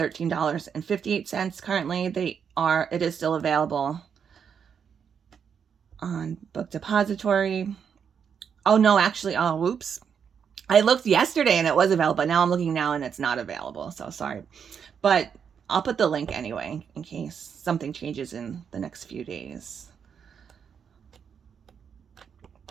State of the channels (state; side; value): quieter; left; 7.2 dB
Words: currently. It is still available on Book Depository. Oh no, actually, oh whoops. I looked yesterday and it was available, but now I'm looking now and it's not available. So sorry. But I'll put the link anyway in case something changes in the next few days.